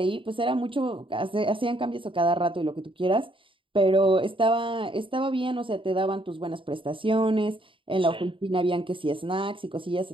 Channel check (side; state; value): left; late; 0.25 ms